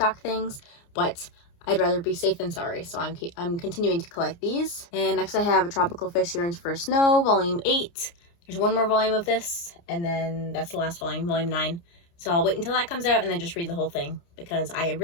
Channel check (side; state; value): right; late; 29 ms